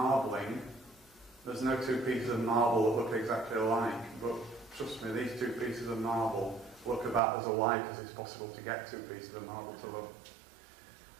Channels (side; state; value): left; drops out; at 7.2 s